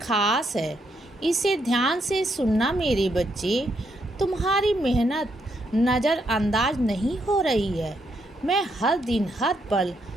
है। इसे ध्यान से सुनना मेरे बच्चे। तुम्हारी मेहनत नज़रअंदाज नहीं हो रही है। मैं हर दिन हर पल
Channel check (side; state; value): both; normal; correlation 0.77